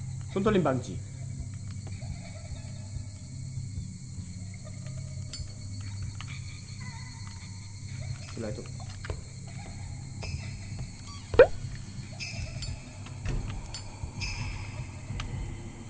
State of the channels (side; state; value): both; identical; correlation 1.00